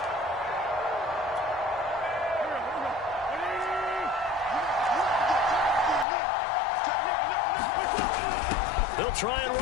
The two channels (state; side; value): drops out; right; at 6.1 s